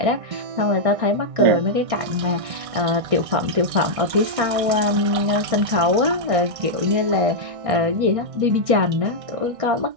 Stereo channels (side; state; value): left; late; 1.6 ms